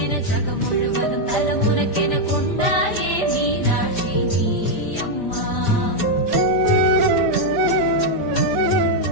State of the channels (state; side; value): late; right; 5.1 ms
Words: ஜகம் முழுவதும் தலம் உனக்கென கொண்டாயே மீனாட்சி நீ அம்மா.